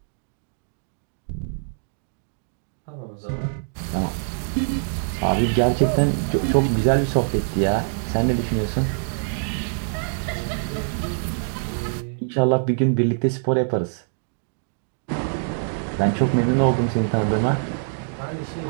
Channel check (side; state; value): left; silent; digital silence